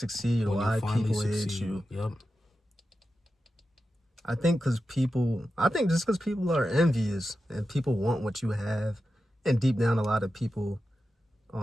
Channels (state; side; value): normal; both; correlation 0.91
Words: why people hate you? Yep. I think just because people are envious and people want what you have, and deep down, a lot of people,